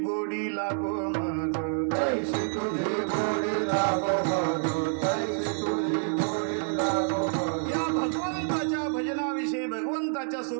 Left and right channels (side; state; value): left; silent; 56 dB below the other